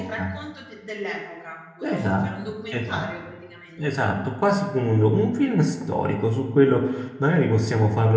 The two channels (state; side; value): identical; both; correlation 1.00